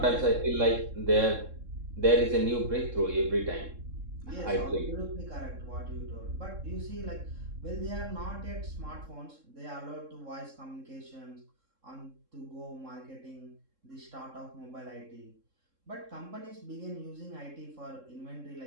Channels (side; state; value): left; late; 3.7 ms